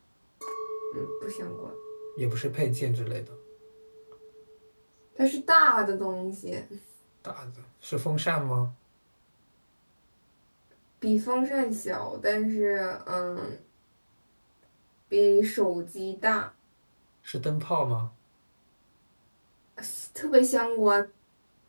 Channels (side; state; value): both; inverted; correlation -1.00